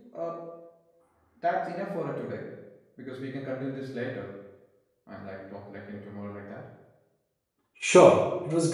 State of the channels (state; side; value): identical; both; correlation 1.00